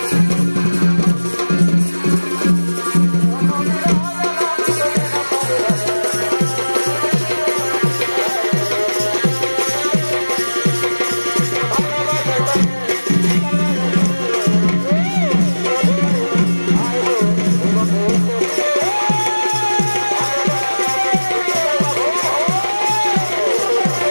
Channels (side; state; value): both; inverted; correlation -1.00